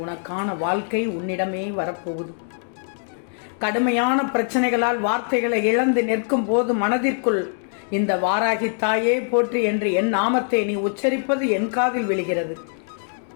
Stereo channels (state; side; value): silent; right; digital silence